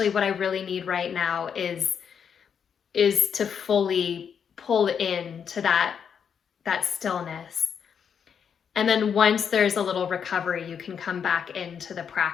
what I really need right now is is to fully pull into that stillness. And then once there's a little recovery, you can come back into the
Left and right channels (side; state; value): right; quieter; 7.4 dB